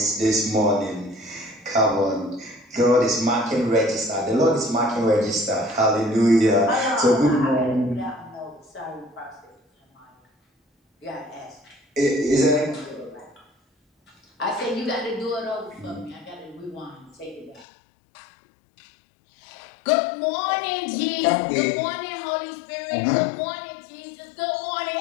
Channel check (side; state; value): right; drops out; at 17.7 s